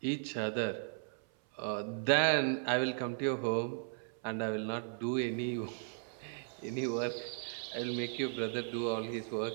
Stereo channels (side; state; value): left; silent; 54 dB below the other